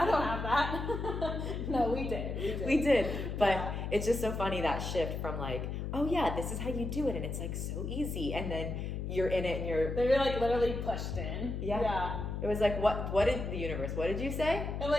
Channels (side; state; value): left; noise; hum, 4 dB below the sound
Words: don't have that. No, we did. But it's just so funny, that shift from like, oh yeah, this is how you do it, and it's like so easy, and then you're in it and they're like literally pushed in. Yeah. It was like, what did the universe, what did you say? I'm